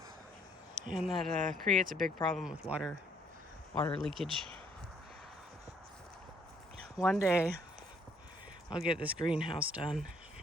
and that creates a big problem with water leakage. One day I'll get this greenhouse done.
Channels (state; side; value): normal; both; correlation 0.65